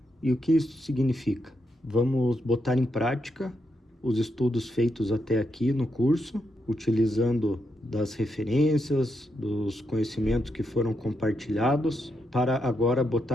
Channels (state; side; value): normal; both; correlation 0.82